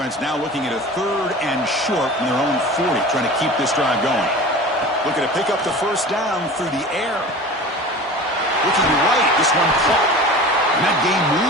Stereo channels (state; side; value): normal; both; correlation 0.37